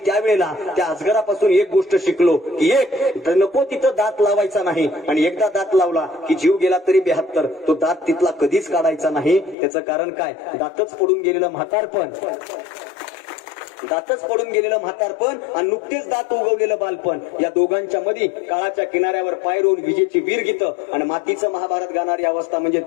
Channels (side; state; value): right; drops out; at 9.6 s